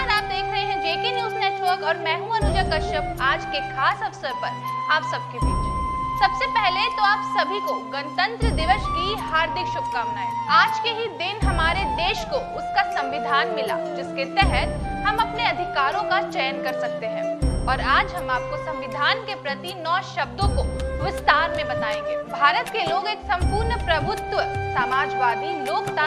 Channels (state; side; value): identical; both; correlation 1.00